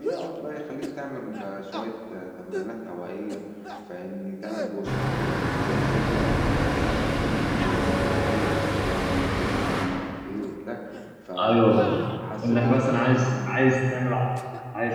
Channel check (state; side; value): identical; both; correlation 1.00